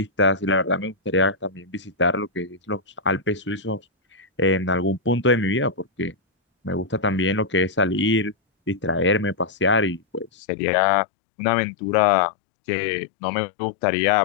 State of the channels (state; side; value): drops out; right; at 10.3 s